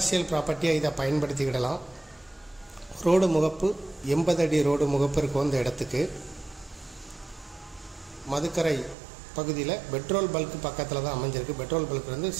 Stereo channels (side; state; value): left; drops out; at 9.0 s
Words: ப்ராப்பர்ட்டியாக இதை பயன்படுத்திக்கிடலாம். ரோடு முகப்பு 80 அடி ரோடு முகப்பு இருக்கும் இந்த இடத்துக்கு. மதுக்கரை பகுதியில் பெட்ரோல் பல்க் பக்கத்தில் தான் அமைஞ்சிருக்கு. பெட்ரோல் பல்க்